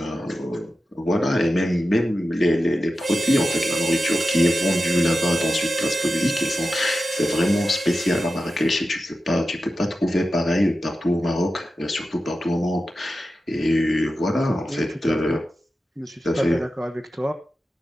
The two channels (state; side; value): normal; both; correlation 0.92